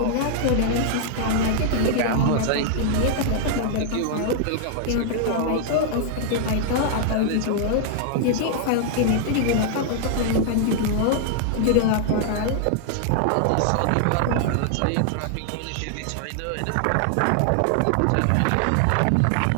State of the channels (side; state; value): both; different; correlation 0.00